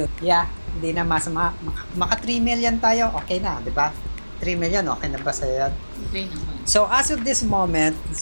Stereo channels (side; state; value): both; inverted; correlation -1.00